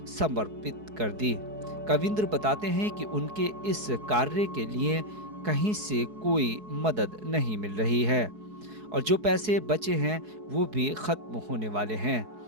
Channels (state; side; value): late; left; 4.7 ms